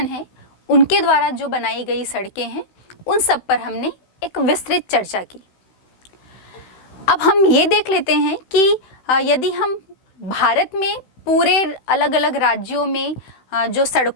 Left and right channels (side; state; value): right; late; 16 ms